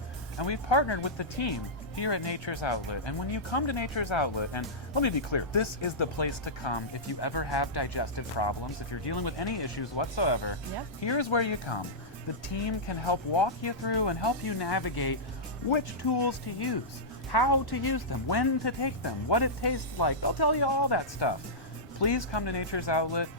and we've partnered with the team here at Nature's Outlet. And when you come to Nature's Outlet, and let me be clear, this is the place to come if you ever have digestive problems, if you're dealing with any issues whatsoever. Yep. Here's where you come. The team can help walk you through and help you navigate which tools to use, how to use them, when to take them, what it tastes like. They'll tell you all that stuff. Please come to Nature's Outlet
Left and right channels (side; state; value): both; normal; correlation -0.13